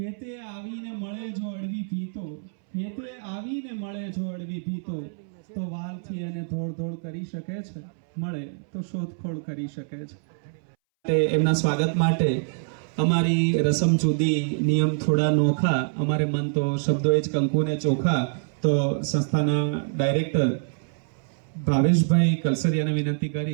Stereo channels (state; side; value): silent; left; 60 dB below the other